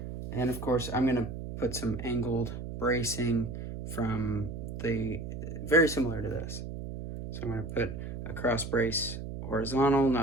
And of course, I'm going to put some angled bracing from the, very similar to this. So I'm going to put a cross brace horizontal,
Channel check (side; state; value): right; noise; hum, 7 dB below the sound